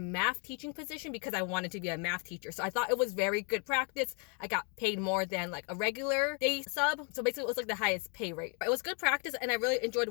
teaching position because I wanted to be a math teacher. So I thought it was very good practice. I got paid more than like a regular day sub. So basically it was like the highest pay rate. It was good practice and I really enjoyed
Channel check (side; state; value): right; quieter; 37.6 dB